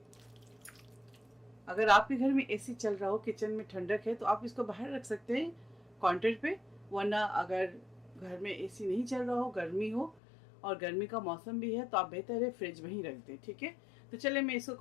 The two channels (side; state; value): right; drops out; at 10.2 s